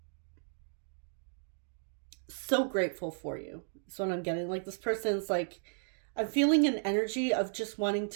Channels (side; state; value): left; silent; digital silence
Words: so grateful for you. That's what I'm getting. Like this person's like, I'm feeling an energy of just wanting